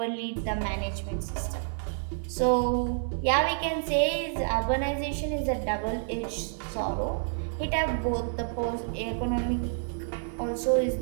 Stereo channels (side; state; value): left; silent; 59 dB below the other